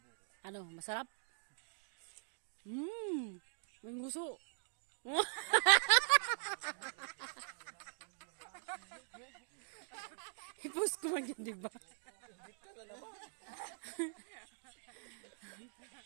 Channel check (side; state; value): left; silent; digital silence